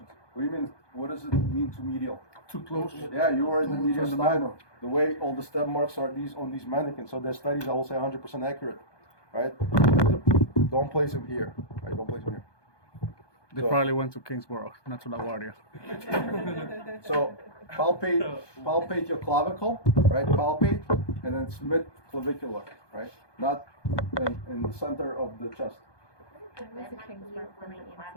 What do you mean? What does it mean too medial? Too close. Yeah, you are in the mediastinal. The way all the step marks are on these mannequins. So their studies, I will say, 100% accurate, right? Don't place him here, right? Don't place him here. They probably went to Kingsborough, not to LaGuardia. So palpate your clavicle, right? Palpate, and then it's mid-clavicular, right? Not in the center of the chest. That might be used when the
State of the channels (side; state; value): right; late; 1.2 ms